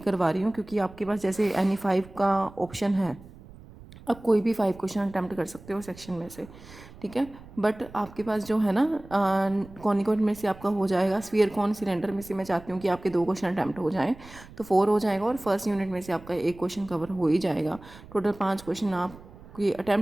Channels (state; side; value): noise; right; rumble, 19 dB below the sound